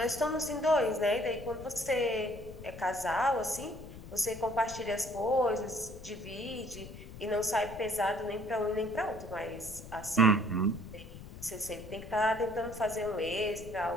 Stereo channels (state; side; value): noise; left; rumble, 14 dB below the sound